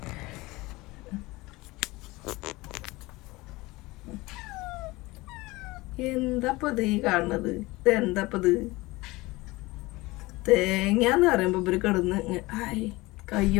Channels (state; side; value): quieter; right; 21.3 dB